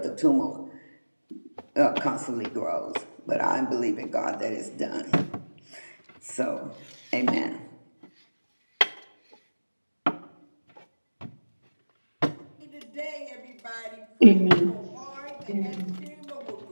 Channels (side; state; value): both; inverted; correlation -1.00